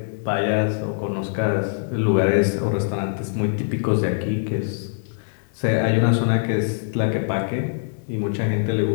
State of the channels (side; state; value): right; silent; 64 dB below the other